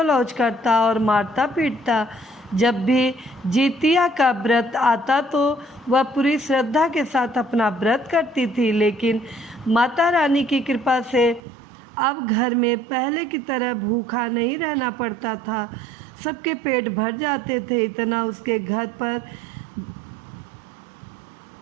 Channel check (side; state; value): left; drops out; at 11.4 s